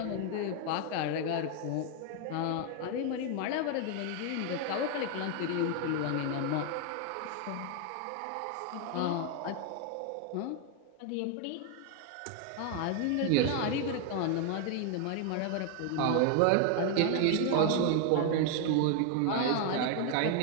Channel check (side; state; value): both; different; correlation 0.00